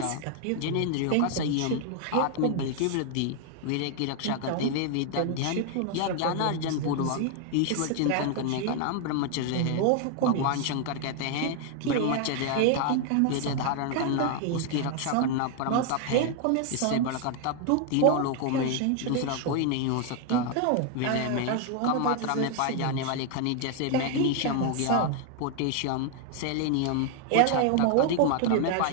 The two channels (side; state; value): both; different; correlation 0.00